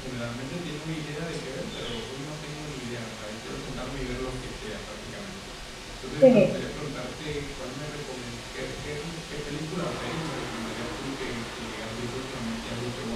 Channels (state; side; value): identical; both; correlation 1.00